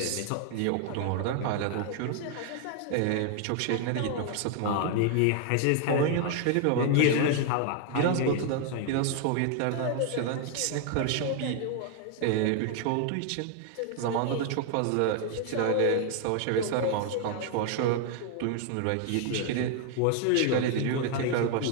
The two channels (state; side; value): different; both; correlation 0.00